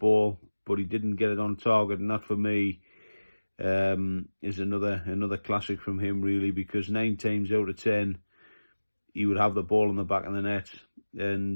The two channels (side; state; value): both; inverted; correlation -1.00